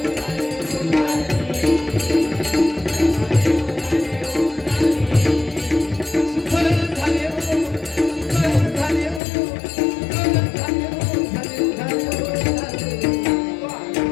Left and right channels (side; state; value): right; drops out; at 9.2 s